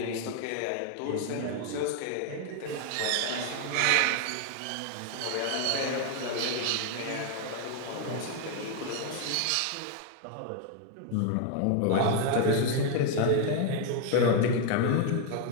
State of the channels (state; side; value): different; both; correlation 0.00